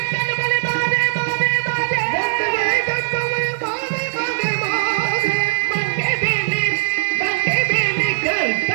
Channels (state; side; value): silent; left; 66 dB below the other